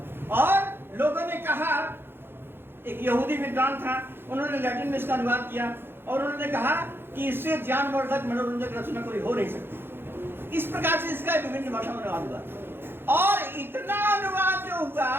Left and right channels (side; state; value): left; late; 0.10 ms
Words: और लोगों ने कहा, एक यहूदी विद्वान था, उन्होंने लैटिन में इसका अनुवाद किया और उन्होंने कहा कि इससे ज्ञानवर्धक मनोरंजक रचना कोई हो नहीं सकती। इस प्रकार से इसका विभिन्न भाषा में अनुवाद हुआ। और इतना अनुवाद जो हुआ